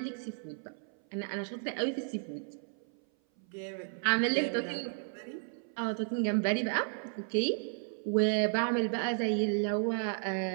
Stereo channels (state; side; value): silent; left; 55 dB below the other